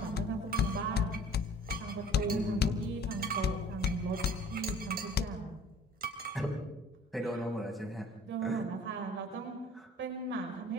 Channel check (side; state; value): both; normal; correlation 0.49